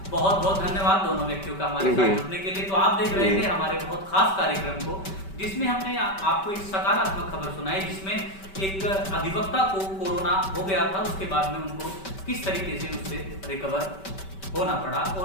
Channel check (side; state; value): right; late; 5.2 ms